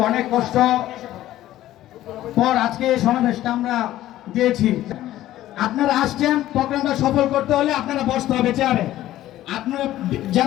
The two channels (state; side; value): quieter; right; 14.2 dB